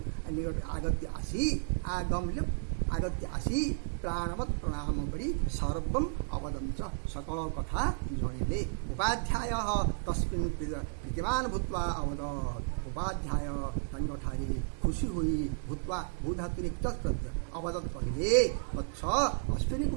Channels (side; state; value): left; silent; 56 dB below the other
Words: आगत्य आसी आगत्य आसी प्राणवत् प्रणाम करी सर्वम अवदं च सकल कथा जणिले उपाध्याय तस्मिन् प्रीतिमान भूत्वा अवदत् उपाध्याय तंगठारी खुशी हुई भूत्वा भूधातुरिक्त अवदत् कहिले वत्स अश्विनी